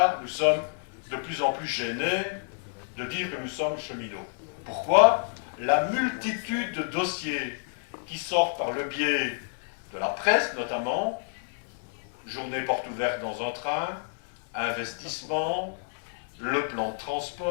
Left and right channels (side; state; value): right; silent; 59 dB below the other